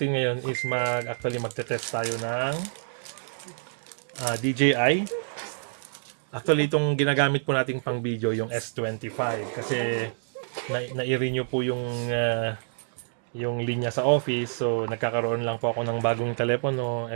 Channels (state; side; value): silent; left; digital silence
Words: ngayon is magte-test tayo ng DJI. Actually, itong ginagamit po nating pang video yung S25 kasi na-renew po yung linya sa office. So, nagkakaroon lang po ako ng bagong telepono